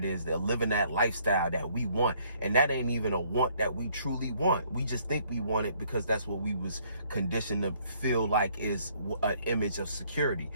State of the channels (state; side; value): inverted; both; correlation -0.64